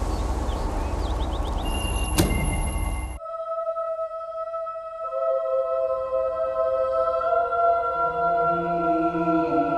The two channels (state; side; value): identical; both; correlation 1.00